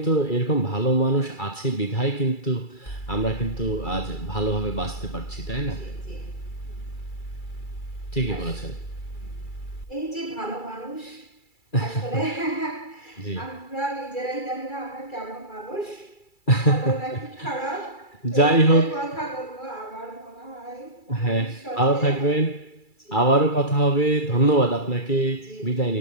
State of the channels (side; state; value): right; late; 2.3 ms